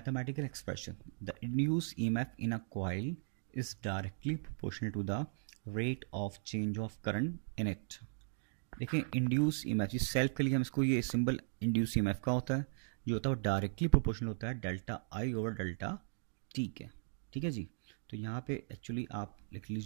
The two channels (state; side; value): silent; left; digital silence